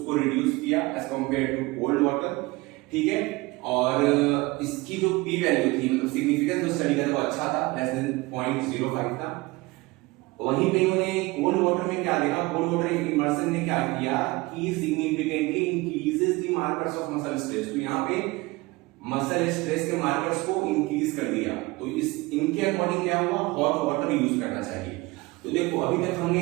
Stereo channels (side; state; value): left; quieter; 22.5 dB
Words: रिड्यूस किया as compared to cold water, ठीक है। और इसकी जो पी वैल्यू थी, मतलब सिग्निफिकेंस जो स्टडी का वो अच्छा था, लेस देन 0.05 था। वहीं पे इन्होंने कोल्ड वाटर में क्या देखा, कोल्ड वाटर इमर्शन ने क्या किया कि significantly increases the markers of muscle stress. तो यहाँ पे मसल स्ट्रेस के मार्कर्स को इंक्रीज कर दिया। तो इनके अकॉर्डिंग क्या हुआ, हॉट वाटर यूज करना चाहिए। तो देखो अभी तक